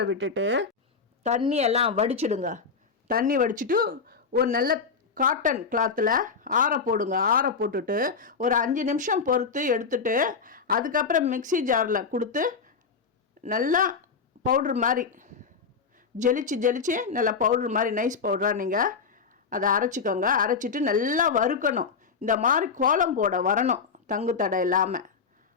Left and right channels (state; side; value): quieter; right; 5.3 dB